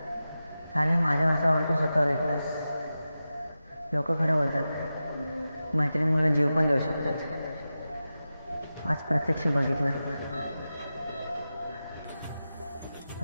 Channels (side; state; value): both; inverted; correlation -0.93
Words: चालेल, माझ्या वासावर तू स्वतःवर येतोस. लोक खरं बोलतात, मैत्रिणीमुळे जीव पण देऊ शकतात. आज प्रत्यक्ष बघितलं,